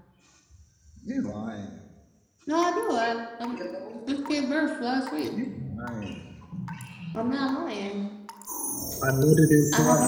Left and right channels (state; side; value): identical; both; correlation 1.00